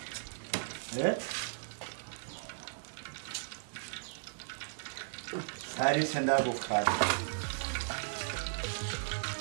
sari senda gukata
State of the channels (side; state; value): left; silent; digital silence